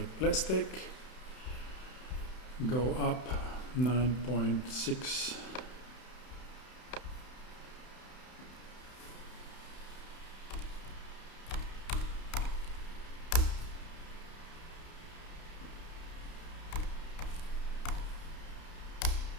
plastic. Go up 9.6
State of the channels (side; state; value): right; late; 31 ms